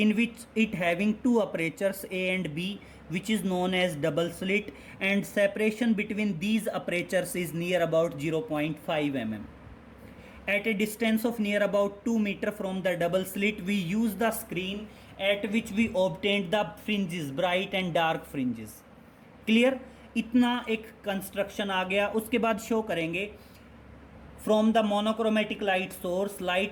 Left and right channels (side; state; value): both; identical; correlation 1.00